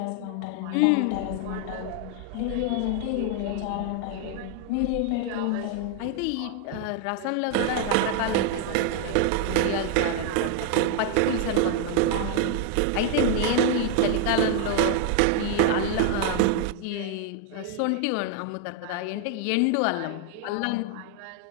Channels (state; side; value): different; both; correlation 0.00